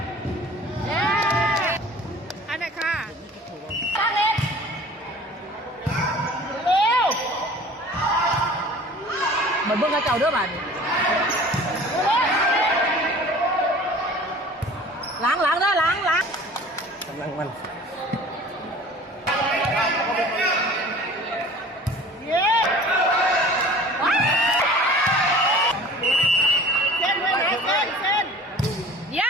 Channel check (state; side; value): normal; both; correlation 0.44